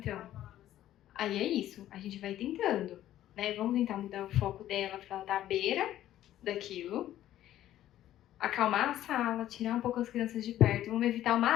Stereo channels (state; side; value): quieter; right; 12.9 dB